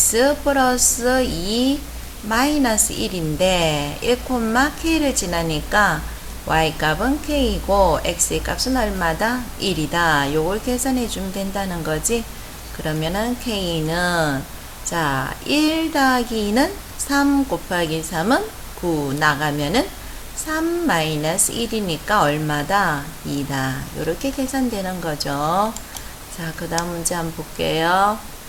플러스 2 마이너스 1인데 1,k를 지나니까 y값은 k이고 x의 값은 얼마다? 1이다. 요걸 계산해 주면 된다는 거지. 그러면은 k는 자, 1 더하기 2는 3 곱하기 3은 9 나가면은 3 마이너스 1이니까 얼마다? 2다. 이렇게 계산되는 거죠. 자, 그 다음 문제 한번 볼게요.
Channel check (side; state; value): both; identical; correlation 1.00